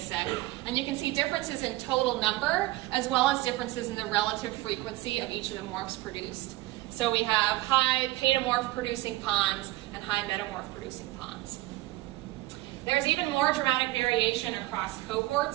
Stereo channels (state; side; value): quieter; left; 18.6 dB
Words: And you can see differences in total number, as well as differences in the relative frequency of each of the morphs produced. So we have high paedomorph producing ponds and high metamorph producing ponds. There's even more dramatic variation across